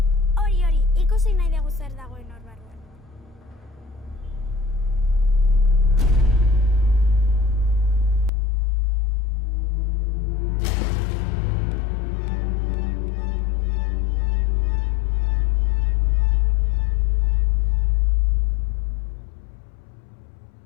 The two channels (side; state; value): right; drops out; at 8.3 s